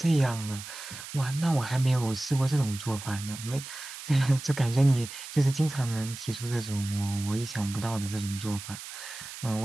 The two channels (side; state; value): right; noise; hiss, 11 dB below the sound